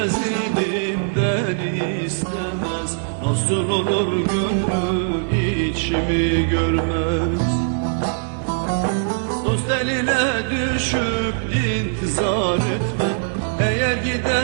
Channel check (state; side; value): silent; left; digital silence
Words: idim beni istemez. Nasıl olur gönlü içimi görmez. Dost eline düşüp intizar etmem, eğer